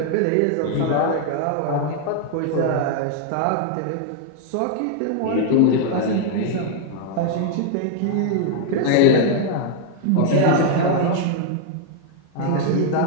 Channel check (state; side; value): different; both; correlation 0.00